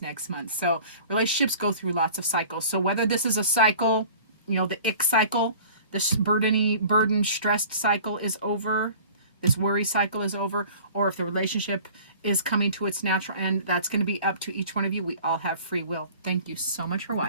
next month. So relationships go through lots of cycles. So whether this is a cycle, the ick cycle, this burden, stressed cycle is over, this worry cycle is over, or if the relationship is coming to its natural end, that's going to be up to each one of you. We all have free will. Thank you so much for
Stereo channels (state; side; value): inverted; both; correlation -0.45